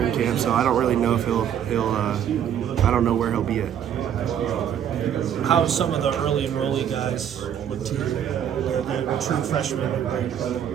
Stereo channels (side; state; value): left; quieter; 9.4 dB